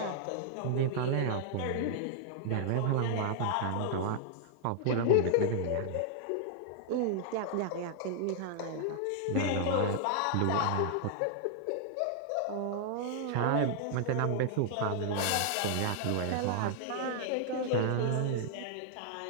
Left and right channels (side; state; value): both; different; correlation -0.01